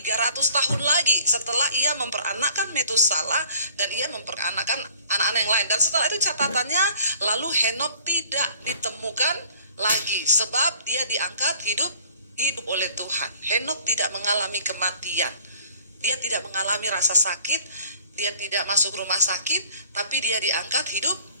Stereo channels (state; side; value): inverted; both; correlation -0.52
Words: tahun lagi setelah ia memperanakkan Metusalah dan ia memperanakkan anak-anak yang lain. Dan setelah itu catatannya, lalu Henokh tidak ditemukan lagi sebab dia diangkat hidup oleh Tuhan. Henokh tidak mengalami kematian, dia tidak mengalami rasa sakit, dia tidak masuk rumah sakit, tapi dia diangkat hidup.